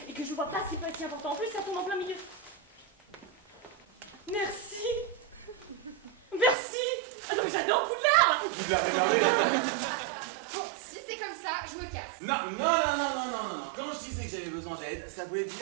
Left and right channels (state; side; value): drops out; left; at 6.6 s